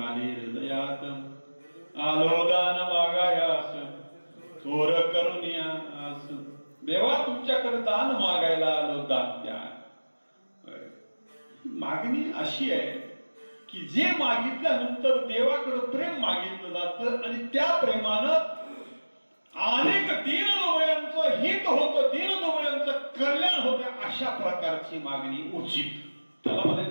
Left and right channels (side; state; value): both; inverted; correlation -1.00